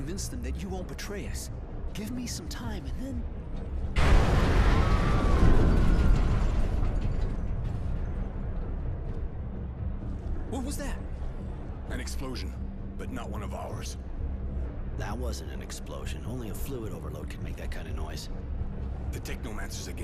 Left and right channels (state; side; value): identical; both; correlation 1.00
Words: them that you won't betray us. Give me some time, and then... What was that? An explosion, but not one of ours. That wasn't an explosion. Only a fluid overload can make that kind of noise. The Technomancers